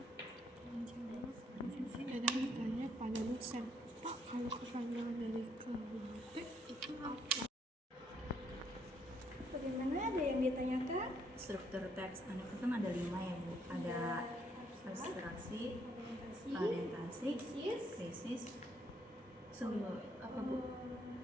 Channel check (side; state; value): both; normal; correlation 0.70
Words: Ada yang tanya pada dosen, Pak, kalau kepanjangan dari KBT itu apa? Bagaimana, ada yang ditanyakan? Struktur teks anekdot kan ada 5 ya, Bu. Ada abstraksi, orientasi, krisis, sumber apa, Bu?